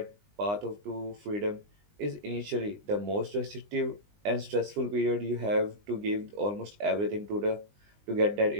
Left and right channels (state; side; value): late; left; 20 ms